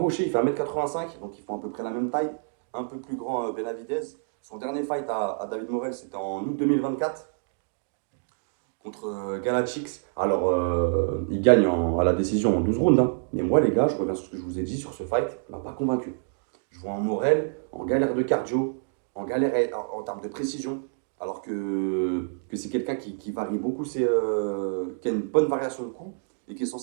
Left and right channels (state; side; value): silent; left; digital silence